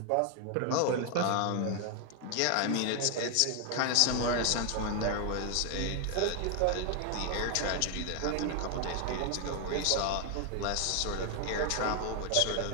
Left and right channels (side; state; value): both; different; correlation 0.00